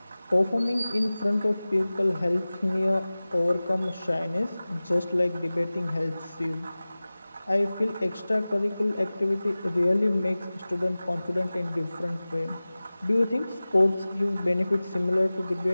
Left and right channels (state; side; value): inverted; both; correlation -0.98